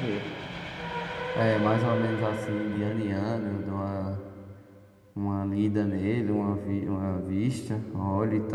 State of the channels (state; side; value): identical; both; correlation 1.00